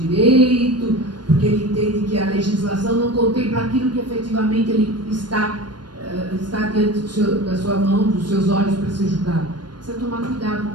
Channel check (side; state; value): left; late; 0.71 ms